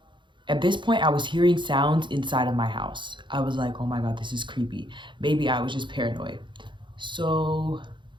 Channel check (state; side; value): late; left; 0.23 ms